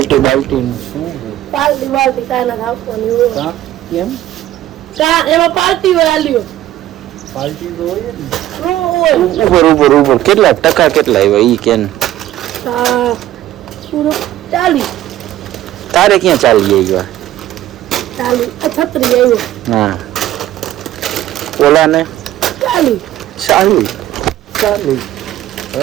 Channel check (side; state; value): left; quieter; 13.8 dB